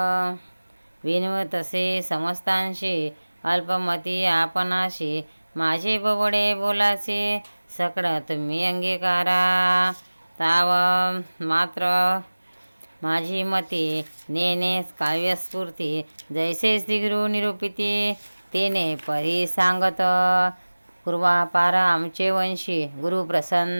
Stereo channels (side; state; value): both; inverted; correlation -1.00